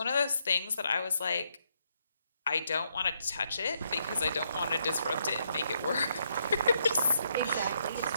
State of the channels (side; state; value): both; inverted; correlation -0.76